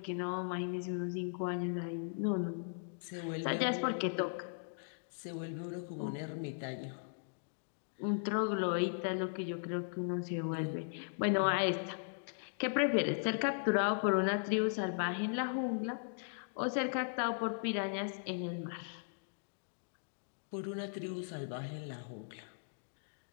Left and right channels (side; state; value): right; silent; digital silence